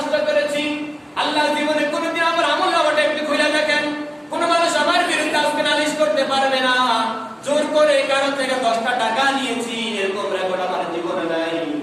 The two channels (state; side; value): identical; both; correlation 1.00